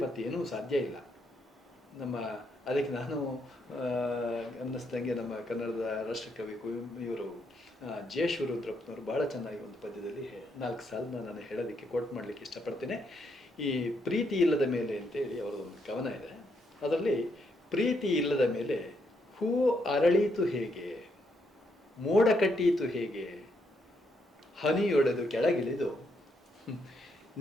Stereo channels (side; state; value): both; normal; correlation 0.76